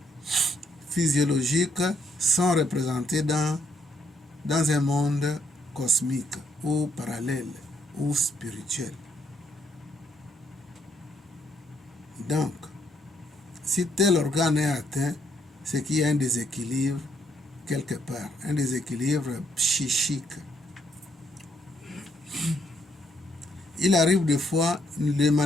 physiologiques sont représentés dans un monde cosmique ou parallèle ou spirituel. Donc, si tel organe est atteint, c'est qu'il y a un déséquilibre quelque part, un déséquilibre psychique. Il arrive des fois, les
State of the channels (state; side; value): normal; both; correlation 0.72